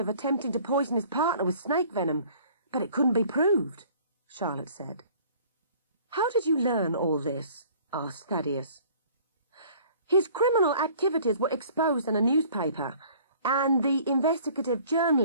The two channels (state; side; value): inverted; both; correlation -0.52